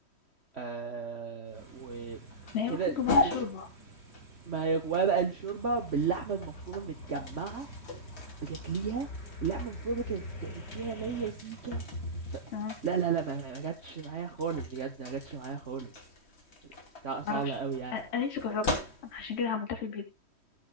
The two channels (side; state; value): right; late; 3.1 ms